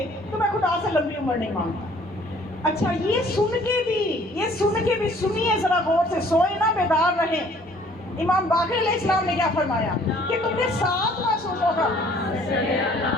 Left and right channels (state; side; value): normal; both; correlation 0.57